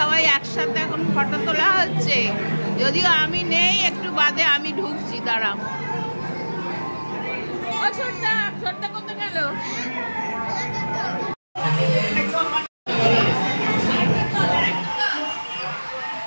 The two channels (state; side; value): inverted; both; correlation -1.00